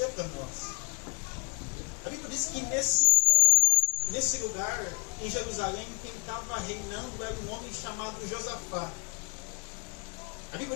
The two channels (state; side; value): quieter; right; 35.3 dB